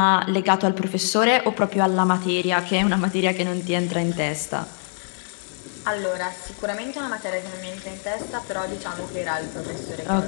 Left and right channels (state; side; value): silent; right; digital silence